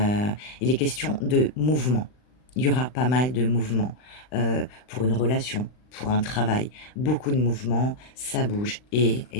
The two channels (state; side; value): late; right; 39 ms